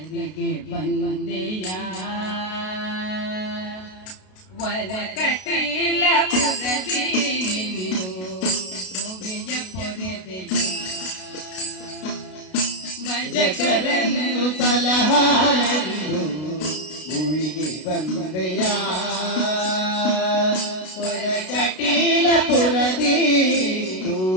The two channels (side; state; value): right; late; 32 ms